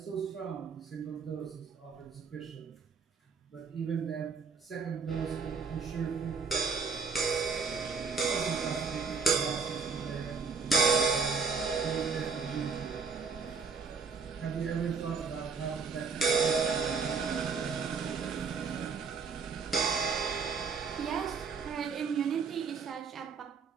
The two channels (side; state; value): left; quieter; 5.2 dB